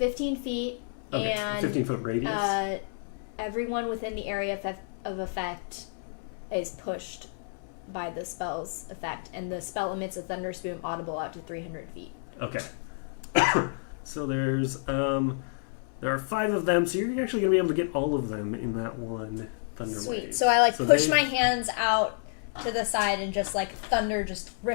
feet. Okay, and 15-foot radius. Everyone within the area of effect is pushed by the spell's effect, and the spell emits a thunder spume audible out to 300 feet. Okay. So there are 5 of them, so you're actually going to be able to get all of them in that one thunder Sweet. wave. So I push my hands out to the side, and just like thunder just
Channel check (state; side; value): silent; right; 58 dB below the other